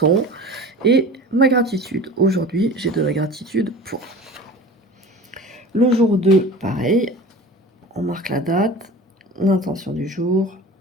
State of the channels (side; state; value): both; normal; correlation 0.37